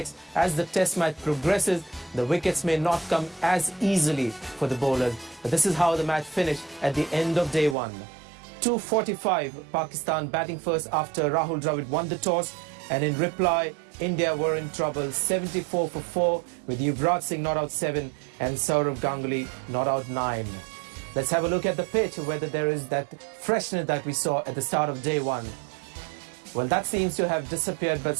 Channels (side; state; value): left; drops out; at 7.8 s